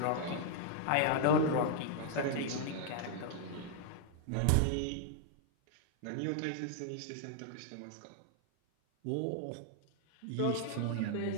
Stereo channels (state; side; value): different; both; correlation -0.01